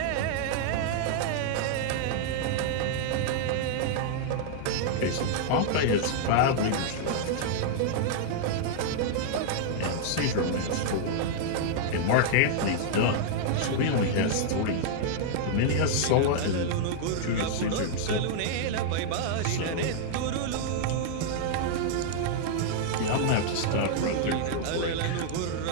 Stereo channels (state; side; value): different; both; correlation -0.01